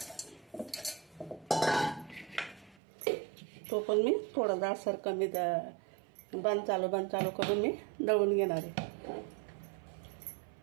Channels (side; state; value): left; drops out; at 2.8 s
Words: तो पण मी थोडा दाटसर कमी बंद चालू करून मी दळून घेणार आहे.